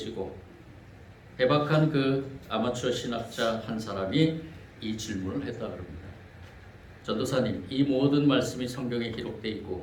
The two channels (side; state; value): both; identical; correlation 1.00